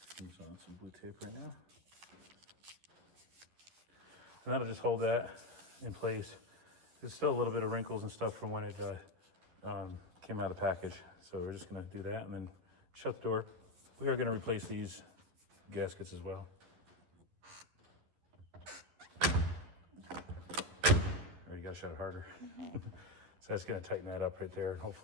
I'm on some blue tape right now. And that'll just hold that in place. There's still a little bit of wrinkles and stuff from when it came out of the package. So we're just gonna do that and then shut the door. We are gonna replace these gaskets as well. Or you gotta shut it harder. So that's gonna tighten that up right there and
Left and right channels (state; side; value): late; left; 11 ms